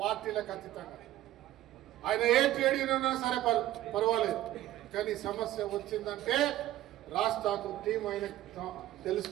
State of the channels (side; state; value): left; quieter; 14.4 dB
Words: పార్టీలకు అతీతంగా ఆయన ఏ ట్రేడ్ యూనియన్ ఉన్నా సరే పర్వాలేదు, కానీ సమస్య వచ్చిందంటే రాజ్ ఠాకూర్ టీం ఆయన